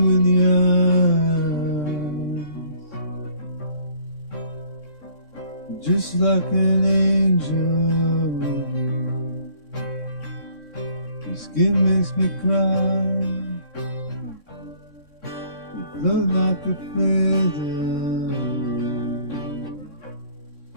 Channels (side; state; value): left; late; 3.6 ms